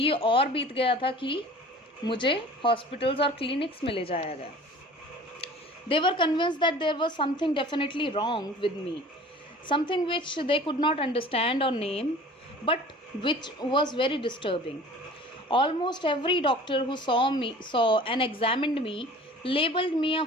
और बीत गया था कि मुझे हॉस्पिटल्स और क्लिनिक्स में ले जाया गया. They were convinced that there was something definitely wrong with me, something which they could not understand or name, but which was very disturbing. Almost every doctor who saw and examined me labeled me a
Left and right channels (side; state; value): both; normal; correlation 0.45